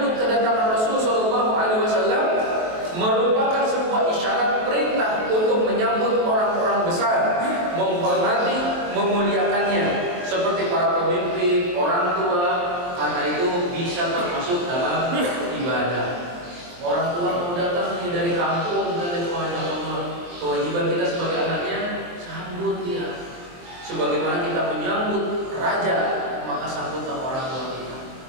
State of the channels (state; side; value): late; left; 23 ms